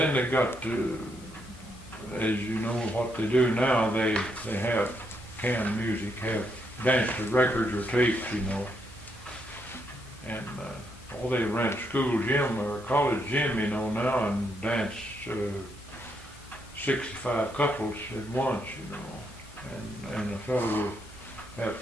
they got to, as you know, what they do now, they have canned music, have dance to records or tapes, you know, and all they rent school gym or college gym, you know, now, and dance 65 couples at once, you know, and a fellow will have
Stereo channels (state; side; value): normal; both; correlation 0.77